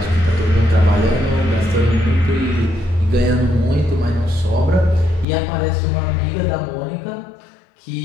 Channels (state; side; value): drops out; right; at 5.2 s